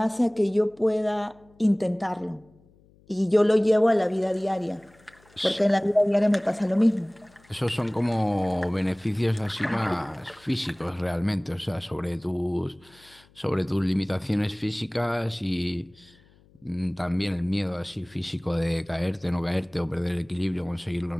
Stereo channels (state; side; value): noise; left; hum, 29 dB below the sound